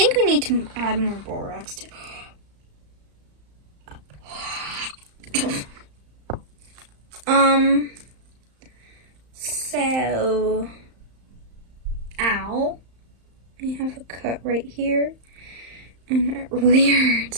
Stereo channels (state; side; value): late; left; 35 ms